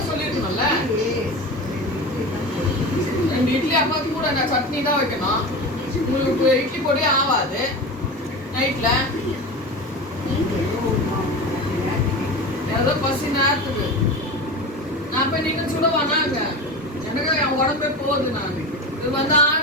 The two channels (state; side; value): normal; both; correlation 0.28